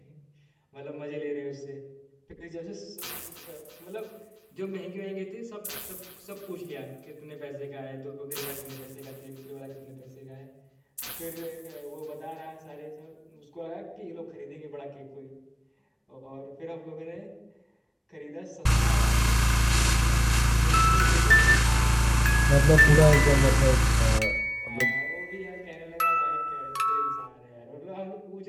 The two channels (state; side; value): identical; both; correlation 1.00